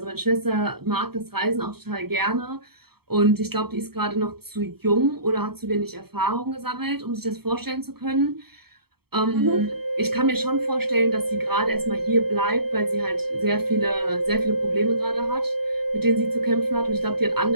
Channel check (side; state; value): left; late; 0.96 ms